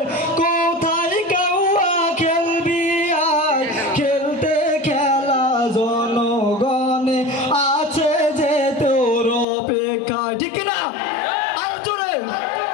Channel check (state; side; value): drops out; right; at 9.5 s